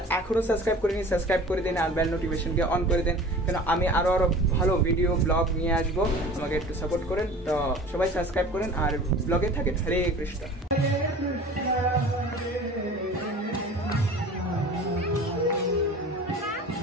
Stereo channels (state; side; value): normal; both; correlation 0.41